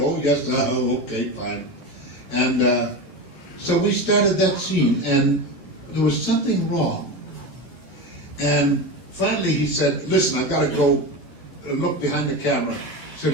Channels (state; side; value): late; right; 11 ms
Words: yes, okay, fine. And so we started that scene, and there was something wrong. And finally he said, listen, I've got to go look behind the camera. He